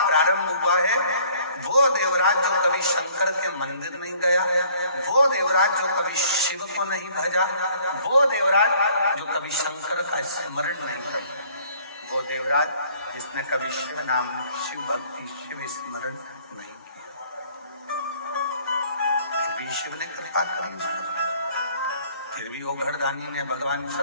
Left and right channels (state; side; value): inverted; both; correlation -0.58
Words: प्रारंभ हुआ है। वो देवराज जो कभी शंकर के मंदिर नहीं गया, वो देवराज जो कभी शिव को नहीं भजा, वो देवराज जो कभी शंकर का स्मरण नहीं करता, वो देवराज जिसने कभी शिव नाम, शिव भक्ति, शिव स्मरण नहीं किया। फिर भी शिव ने कृपा करी उस पर, फिर भी वो घरदानी ने, भगवान